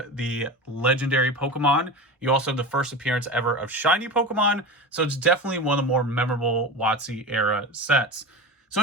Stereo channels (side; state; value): both; normal; correlation 0.26